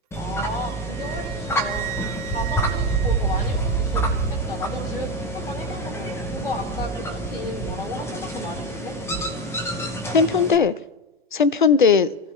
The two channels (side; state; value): both; normal; correlation 0.15